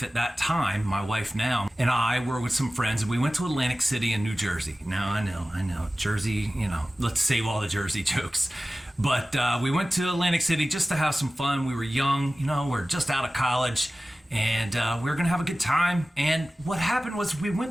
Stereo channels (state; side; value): normal; both; correlation 0.96